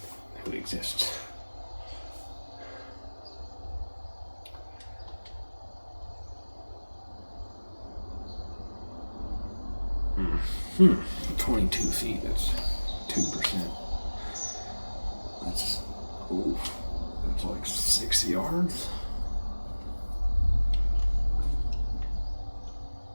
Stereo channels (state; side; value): inverted; both; correlation -1.00